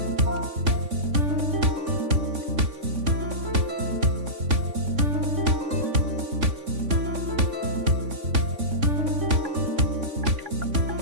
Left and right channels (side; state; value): left; late; 3.5 ms